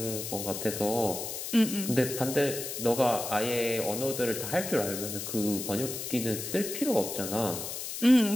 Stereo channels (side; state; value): left; noise; hiss, 6 dB below the sound